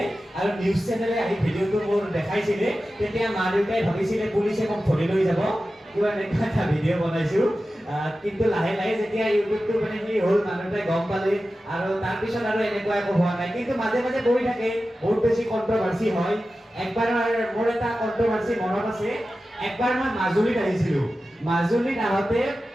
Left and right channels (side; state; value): both; normal; correlation 0.94